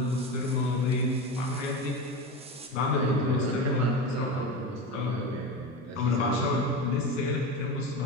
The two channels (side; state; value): both; normal; correlation 0.24